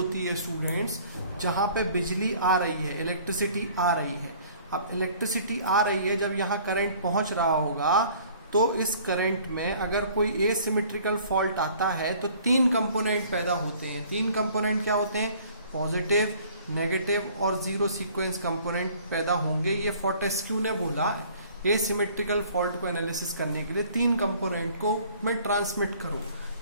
है स्टूडेंट्स, जहां पे बिजली आ रही है, इलेक्ट्रिसिटी आ रही है। अब इलेक्ट्रिसिटी आ रही है, जब यहाँ करंट पहुंच रहा होगा, तो इस करंट में अगर कोई एसिमेट्रिकल फॉल्ट आता है तो 3 कंपोनेंट पैदा होते हैं। 3 कंपोनेंट क्या होते हैं? पॉजिटिव, नेगेटिव और जीरो सीक्वेंस कंपोनेंट पैदा होंगे। ये फोर्टेस्क्यू ने बोला एसिमेट्रिकल फॉल्ट को एनालिसिस करने के लिए 3 कंपोनेंट को मैं ट्रांसमिट करूं,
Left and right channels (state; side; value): inverted; both; correlation -0.54